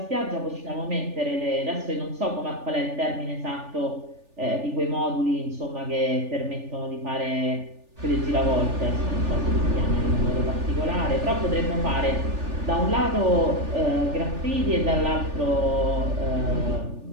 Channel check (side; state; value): left; late; 3.4 ms